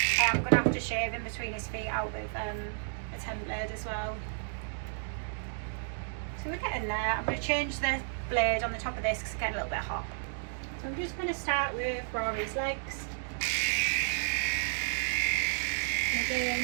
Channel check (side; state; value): left; silent; digital silence